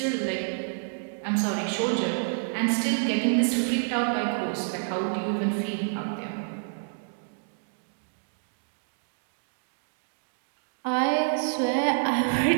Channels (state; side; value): silent; left; digital silence